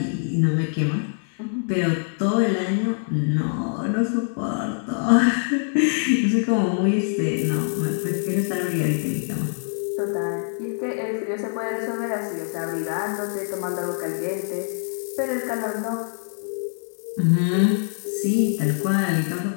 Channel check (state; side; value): silent; right; digital silence